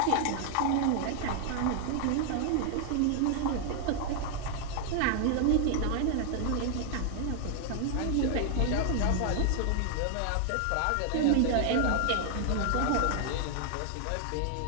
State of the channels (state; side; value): different; both; correlation 0.00